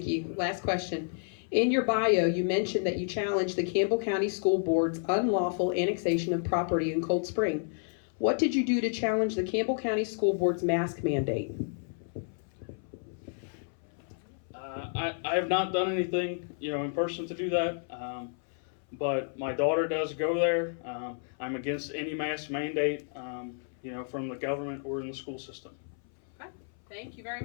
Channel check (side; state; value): right; silent; 57 dB below the other